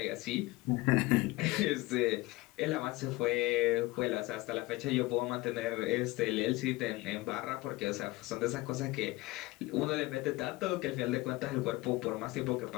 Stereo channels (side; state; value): right; quieter; 20.7 dB